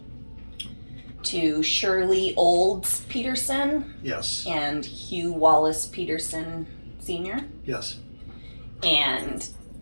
To Shirley Olds Peterson Yes, and Hugh Wallace Peterson Sr. yes, And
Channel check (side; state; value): both; inverted; correlation -1.00